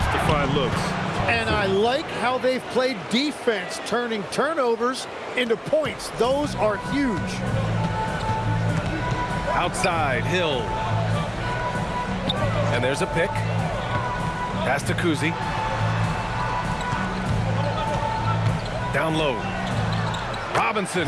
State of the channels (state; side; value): identical; both; correlation 1.00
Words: to find looks. And I like how they've played defense, turning turnovers into points. Those are huge. Outside, Hill. And there's a pick. Pass to Cousy. Down low. Robinson